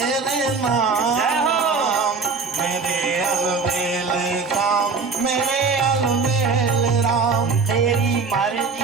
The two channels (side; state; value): left; quieter; 4.7 dB